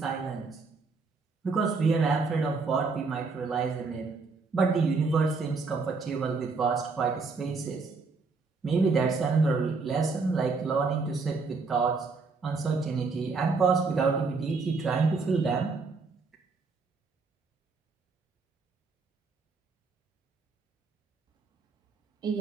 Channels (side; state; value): left; quieter; 4.3 dB